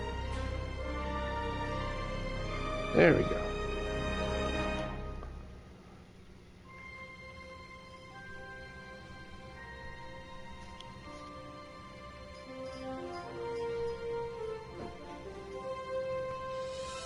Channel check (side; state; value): both; identical; correlation 1.00